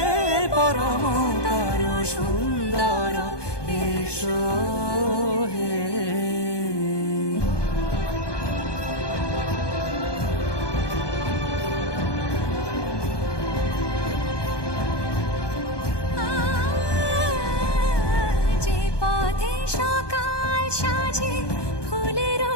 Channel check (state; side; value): late; right; 1.2 ms